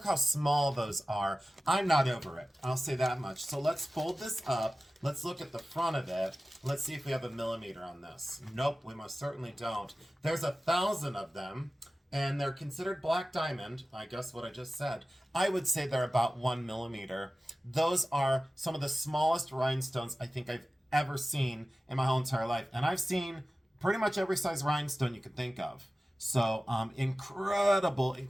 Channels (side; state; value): both; normal; correlation 0.96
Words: how small those are. I'm not over it. I'll say that much. So let's fold this up. Let's look at the front of it. Let's see if we have a millimeter on this. Nope, we most certainly don't. There's 1,000 of them. And they're considered black diamond. I guess what I just said. I would say they're about 1 millimeter. Those are some of the smallest rhinestones I think I've ever seen in my whole entire life. And I've seen pretty much every size rhinestone you could think of. So